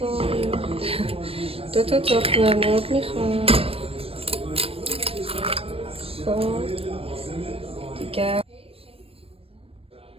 2 تا تخمه مرغ میخوام. خب دیگه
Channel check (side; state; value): left; late; 0.28 ms